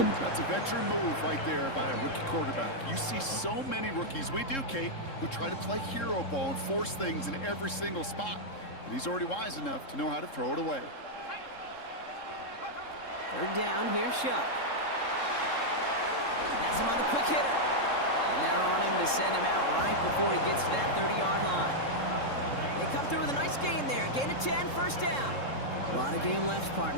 That's a veteran move right there by a rookie quarterback. You see so many rookies, we do, Kate, who try to play hero ball and force things in every single spot. But he's already wise enough to know how to throw it away. 3rd down, here's Shuck. That's him on the quick hitter. And they're on him to send him out right before he gets to that 30-yard line. They come through with a nice gain there. Gain of 10, 1st down. A lot of game left,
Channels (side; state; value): right; late; 3.7 ms